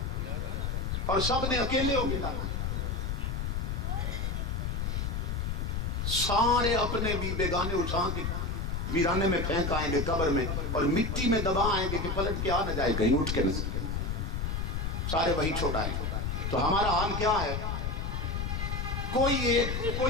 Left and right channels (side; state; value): left; noise; rumble, 1 dB below the sound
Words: اور سب نے اکیلے ہو کے جانا۔ سارے اپنے بھی بیگانے اٹھا کے ویرانے میں پھینک آئیں گے قبر میں، اور مٹی میں دبا آئیں گے کہ پلٹ کے آ نہ جائے کہیں اٹھ کے نہ، سارے وہی چھوڑائیں گے۔ تو ہمارا حال کیا ہے؟ کوئی